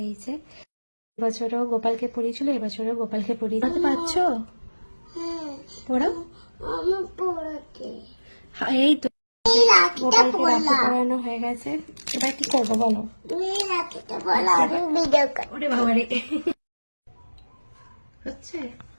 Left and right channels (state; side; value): inverted; both; correlation -1.00